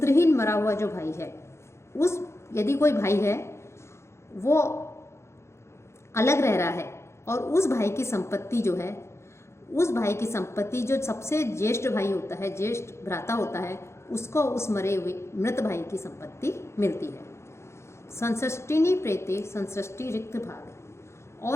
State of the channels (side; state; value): right; late; 0.13 ms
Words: मरा हुआ जो भाई है, उस यदि कोई भाई है वो अलग रह रहा है और उस भाई की संपत्ति जो है, उस भाई की संपत्ति जो सबसे ज्येष्ठ भाई होता है, ज्येष्ठ भ्राता होता है, उसको उस मरे हुए मृत भाई की संपत्ति मिलती है। संसृष्टिनी प्रेते संसृष्टि रिक्त भाग।